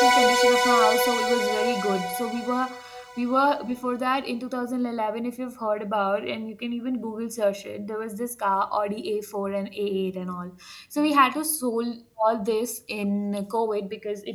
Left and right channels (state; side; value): identical; both; correlation 1.00